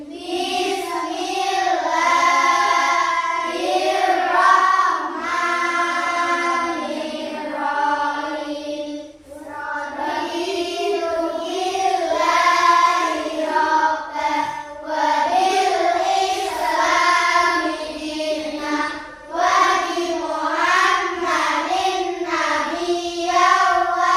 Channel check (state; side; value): identical; both; correlation 1.00